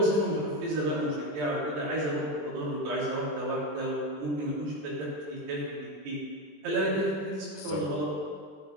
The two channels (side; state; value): left; late; 20 ms